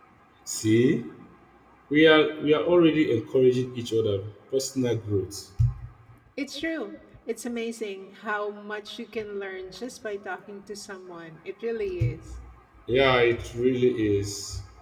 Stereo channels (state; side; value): identical; both; correlation 1.00